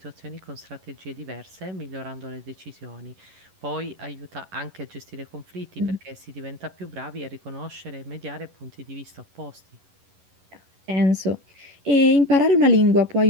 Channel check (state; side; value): late; left; 11 ms